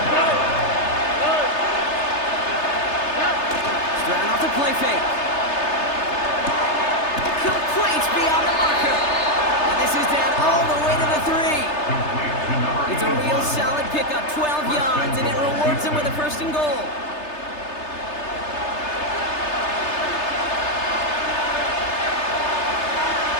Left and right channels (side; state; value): right; late; 3.3 ms